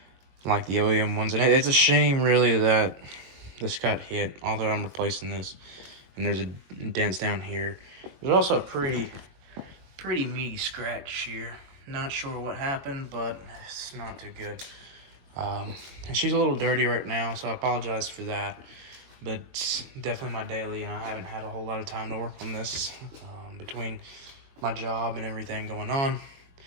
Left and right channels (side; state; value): left; late; 22 ms